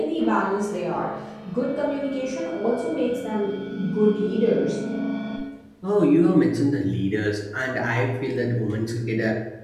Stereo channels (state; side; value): identical; both; correlation 1.00